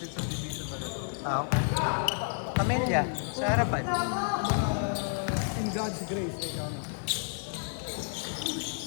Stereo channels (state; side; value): silent; right; digital silence